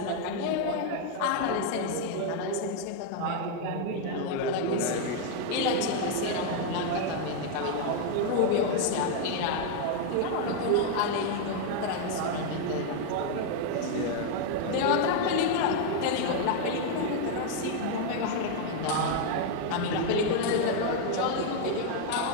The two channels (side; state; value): both; different; correlation 0.00